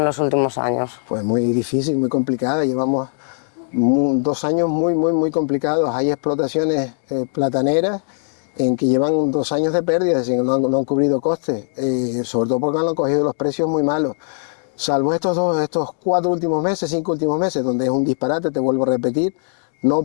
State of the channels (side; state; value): right; silent; digital silence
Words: los últimos años? Pues muy difícil, muy complicada. Llevamos 2 años muy complicados. Hay explotaciones plataneras en que llevan 2 años de pérdida, es decir, no han cubrido costes, sobre todo porque han cogido los precios muy malos. Salvo estos 4 últimos meses, 5 últimos meses, donde es un disparate, te vuelvo a repetir, no